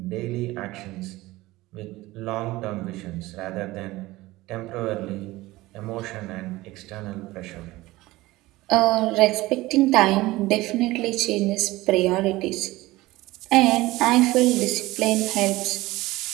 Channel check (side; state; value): left; quieter; 18.9 dB